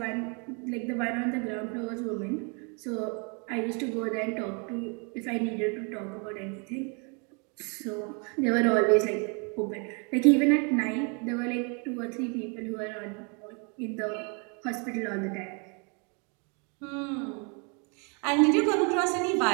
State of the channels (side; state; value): left; quieter; 34.9 dB